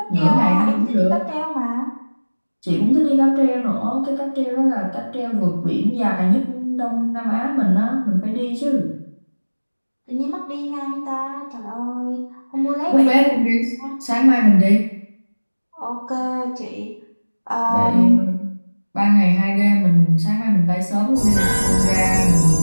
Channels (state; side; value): inverted; both; correlation -1.00